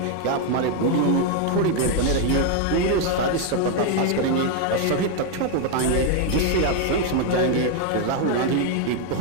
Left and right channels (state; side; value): different; both; correlation 0.01